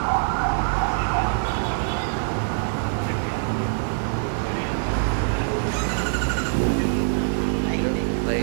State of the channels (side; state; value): left; silent; digital silence